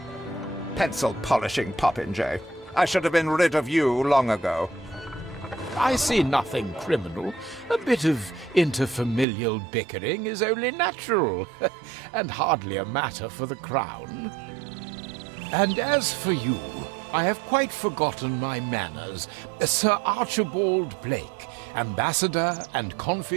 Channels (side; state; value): left; drops out; at 9.2 s